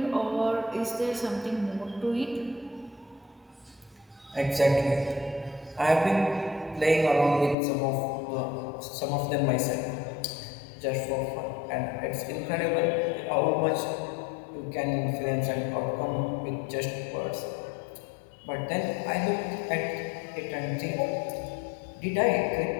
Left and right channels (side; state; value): right; drops out; at 7.6 s